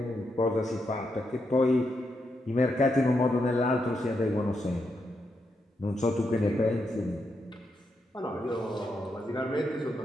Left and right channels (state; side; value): normal; both; correlation 0.82